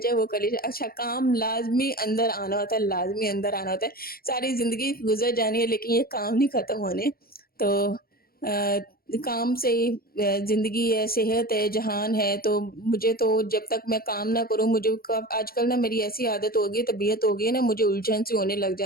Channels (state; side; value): late; right; 0.44 ms